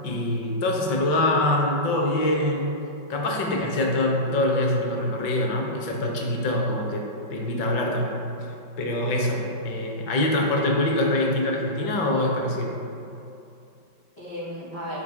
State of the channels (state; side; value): late; right; 5.2 ms